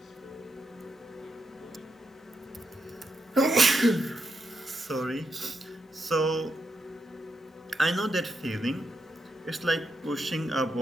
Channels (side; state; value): both; normal; correlation 0.83